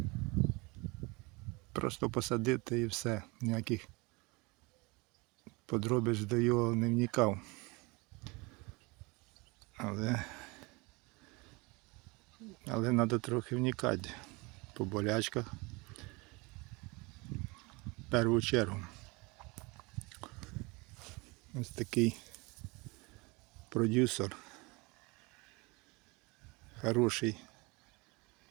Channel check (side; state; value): left; quieter; 26.2 dB